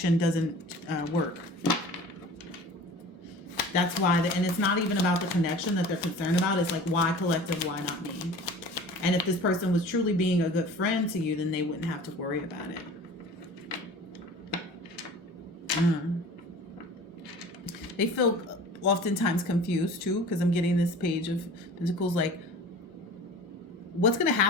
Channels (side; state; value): both; normal; correlation 0.41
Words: doesn't work. That's why, and it's not even about the connection that they're concerned about. It's like, why collective, why not me? And if this person was truly being a good friend to you, then they wouldn't have to worry about it. They feel oftentimes confused too, because I'm getting this Page of Pentacles. Like, what's going to